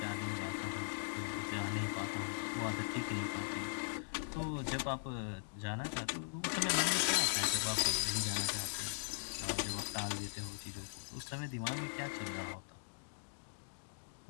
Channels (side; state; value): right; silent; digital silence